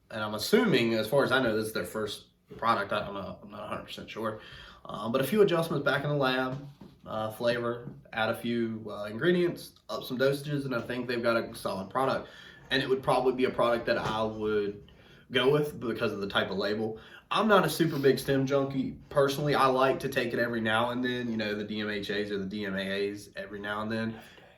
And I'm assuming, as far as I know, this is their first product. I don't know. I'm not 100% sure. But a few adjustments back in the lab. Flavor, add a few ingredients, up some dosages, and I think they've got a solid product. And it would probably be a product that I would go with because of the type of label. I'm not a super big stem junkie. Personally, I like to take it every now and then, the DMHAs or the DMAAs every now and then.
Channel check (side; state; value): both; identical; correlation 1.00